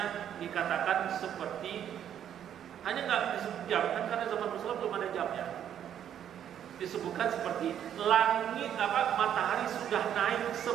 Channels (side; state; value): left; quieter; 9.8 dB